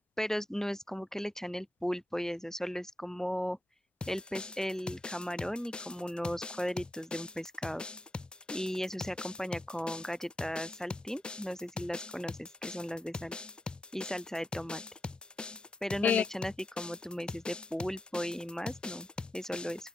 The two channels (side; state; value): both; normal; correlation 0.87